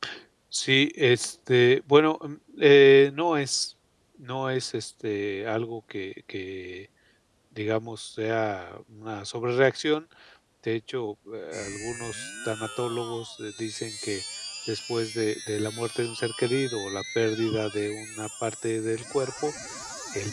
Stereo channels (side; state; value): both; identical; correlation 1.00